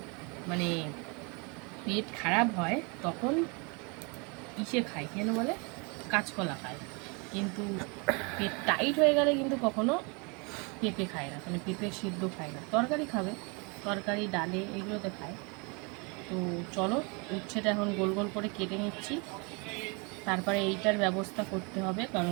মানে পেট খারাপ হয় তখন ইসে খায়, কেন বলে কাঁচকলা খায়, কিন্তু পেট টাইট হয়ে গেলে কিন্তু কখনো পেঁপে খায় না, মানে পেঁপে সিদ্ধ খায় না। তরকারি খাবে, তরকারি ডালে এগুলোতে খায়। তো চলো উচ্ছেটা এখন গোল গোল করে কেটে নিচ্ছি, তারপরে এইটার ব্যবস্থা করতে হবে,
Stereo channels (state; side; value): quieter; left; 31.6 dB